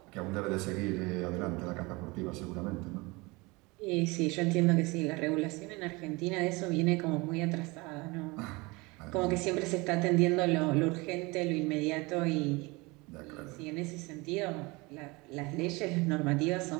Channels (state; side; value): quieter; left; 24.8 dB